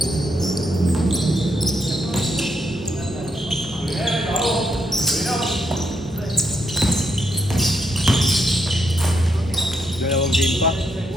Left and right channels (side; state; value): both; normal; correlation 0.79